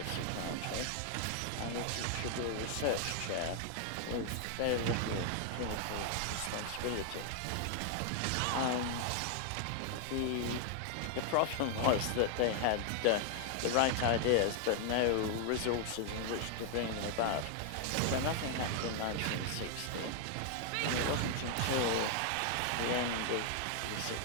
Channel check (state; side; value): different; both; correlation 0.00